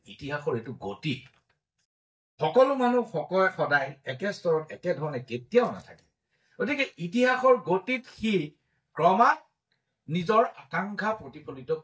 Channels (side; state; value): both; identical; correlation 1.00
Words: ইতিহাসৰ এইটো গতি সকলো মানুহ সদায় একে স্তৰত একে ধৰণে কেতিয়াও নাথাকে গতিকে ইতিহাসৰ গতিত সি ক্ৰমাৎ নিজৰ আকাংক্ষা প্ৰতিফলিত